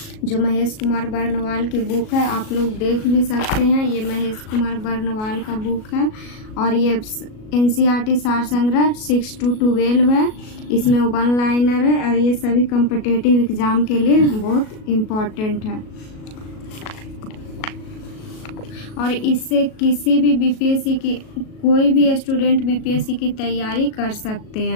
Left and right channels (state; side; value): late; right; 37 ms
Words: जो महेश कुमार बर्नवाल की बुक है। आप लोग देख भी सकते हैं, ये महेश कुमार बर्नवाल का बुक है। और ये एनसीईआरटी सार संग्रह 6 to 12 है। इसमें 1 लाइनर है और ये सभी कॉम्पिटिटिव एग्जाम के लिए बहुत इम्पोर्टेंट है। और इससे किसी भी बीपीएससी की कोई भी स्टूडेंट बीपीएससी की तैयारी कर सकते